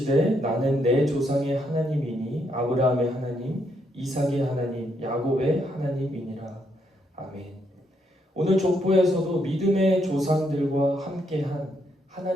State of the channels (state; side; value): normal; both; correlation 0.76